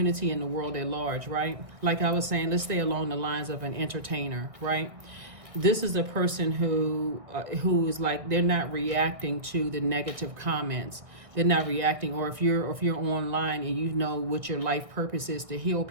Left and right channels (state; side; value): late; left; 1.6 ms